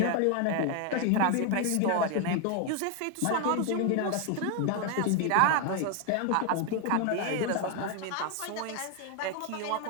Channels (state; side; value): different; both; correlation 0.01